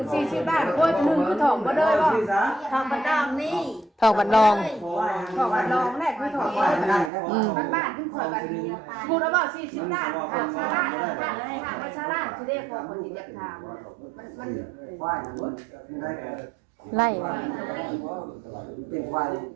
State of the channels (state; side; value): drops out; left; at 7.1 s